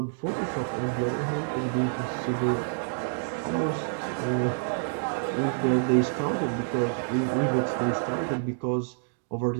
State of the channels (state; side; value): silent; left; digital silence